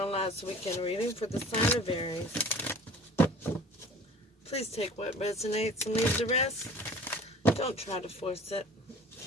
weekend reading for the sign of Aries. Please take what resonates and leave the rest. Don't try to force it.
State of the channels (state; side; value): normal; both; correlation 0.45